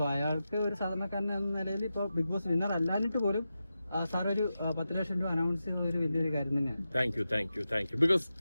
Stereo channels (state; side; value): inverted; both; correlation -0.91